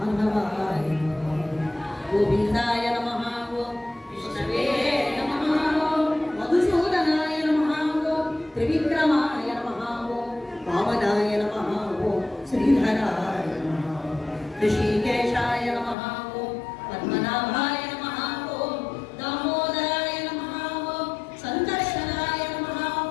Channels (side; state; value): right; drops out; at 16.0 s